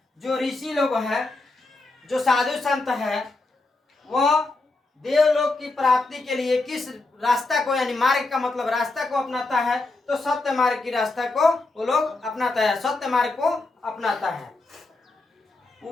जो ऋषि लोग हैं, जो साधु संत है, वह देवलोक की प्राप्ति के लिए किस रास्ता को, यानी मार्ग का मतलब रास्ता को अपनाता है? तो सत्य मार्ग की रास्ता को वो लोग अपनाता है, सत्य मार्ग को अपनाता है।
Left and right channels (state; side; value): quieter; right; 3.3 dB